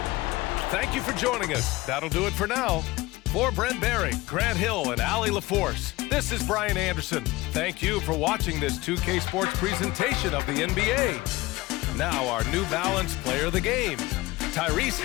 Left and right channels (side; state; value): right; quieter; 20.2 dB